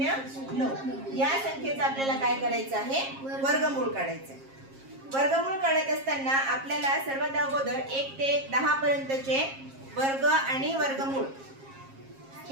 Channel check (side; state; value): left; late; 7.4 ms